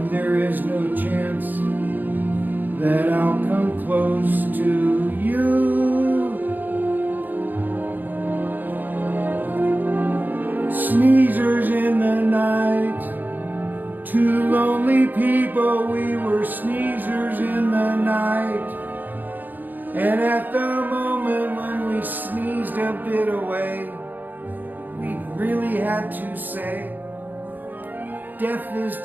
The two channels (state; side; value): late; left; 0.087 ms